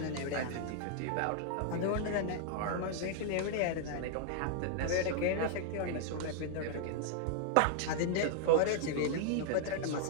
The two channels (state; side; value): different; both; correlation 0.00